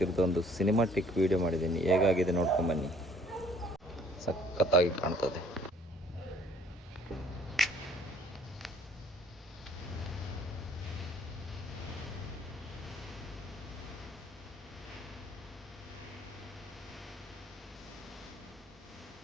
ಸಿನಿಮಾಟಿಕ್ ವಿಡಿಯೋ ಮಾಡಿದ್ದೀನಿ. ಹೇಗಾಗಿದೆ ನೋಡ್ಕೊಂಬನ್ನಿ. ಸಖತ್ತಾಗಿ ಕಾಣ್ತದೆ.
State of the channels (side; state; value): both; normal; correlation 0.58